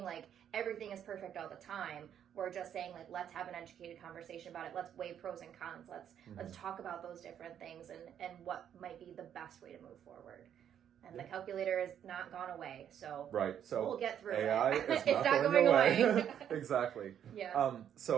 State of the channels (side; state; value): left; quieter; 9.4 dB